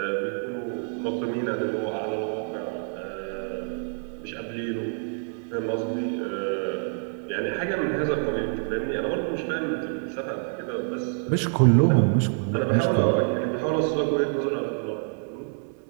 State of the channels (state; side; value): silent; left; 60 dB below the other